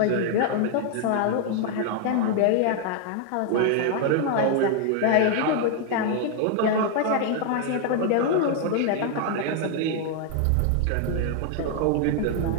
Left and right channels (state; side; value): different; both; correlation 0.00